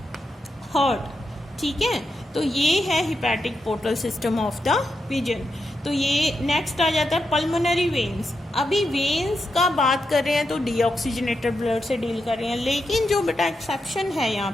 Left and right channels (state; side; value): normal; both; correlation 0.86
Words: heart, ठीक है। तो ये है hepatic portal system of the pigeon. तो ये नेक्स्ट आ जाता है पल्मोनरी वेन्स। अभी वेन्स का बात कर रहे हैं तो डीऑक्सीजनेटेड ब्लड से डील कर रहे हैं, लेकिन जो बेटा एक्सेप्शन है यहाँ